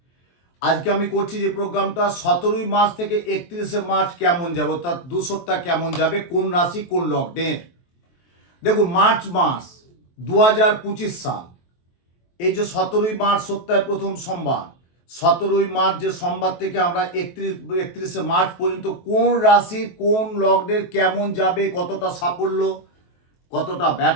আজকে আমি করছি যে প্রোগ্রামটা 17ই মার্চ থেকে 31শে মার্চ কেমন যাবে, অর্থাৎ 2 সপ্তাহ কেমন যাবে, কোন রাশি কোন লগ্নের। দেখুন, মার্চ মাস 2025 সাল, এই যে 17ই মার্চ সপ্তাহের প্রথম সোমবার, 17ই মার্চ যে সোমবার থেকে আমরা 31শে মার্চ পর্যন্ত কোন রাশি কোন লগ্নের কেমন যাবে, কতটা সাফল্য, কতটা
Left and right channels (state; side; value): late; right; 23 ms